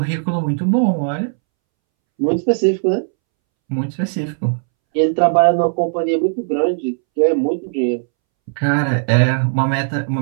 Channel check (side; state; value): left; silent; 66 dB below the other